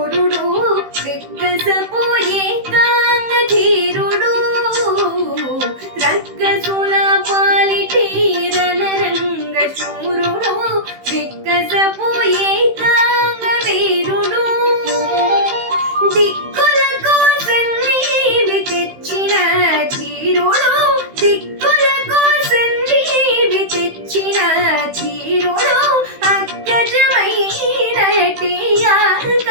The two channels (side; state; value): left; late; 15 ms